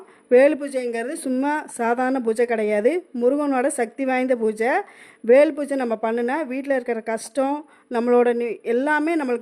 வேல் பூஜைங்கிறது சும்மா சாதாரண பூஜை கிடையாது, முருகனோட சக்தி வாய்ந்த பூஜை. வேல் பூஜை நம்ம பண்ணுனா வீட்டில் இருக்கிற கஷ்டம் நம்மளோட எல்லாமே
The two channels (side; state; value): both; identical; correlation 1.00